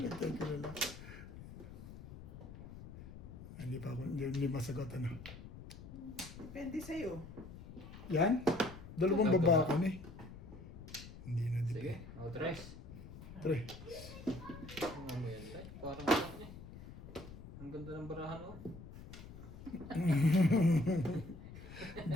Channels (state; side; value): noise; left; rumble, 14 dB below the sound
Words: Thank you na lang. Hindi pa ako, hindi masagot ano. Depende sa'yo. Yan? Dalawang baba ko eh. Hindi na Sige, dito. o tres. Tre. Ano mo yan, tay? Parang ano eh. Ang ganda ng barahan, oh.